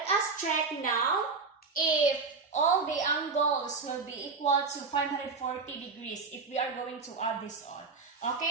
us check now if all the angles will be equal to 540 degrees if we are going to add this all.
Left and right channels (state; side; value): quieter; left; 4.5 dB